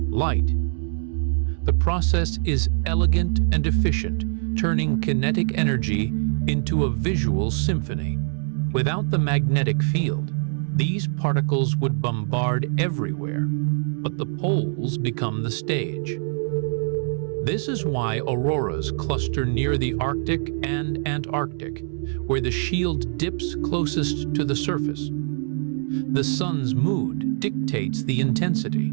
light. The process is elegant and efficient, turning kinetic energy into a visual symphony. Without the magnetic field, these particles would bombard everywhere, but the poles become the stage. This is why auroras cluster near the Arctic and Antarctic, where the shield dips closest to the surface. The sun's mood dictates the intensity.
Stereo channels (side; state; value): left; silent; 63 dB below the other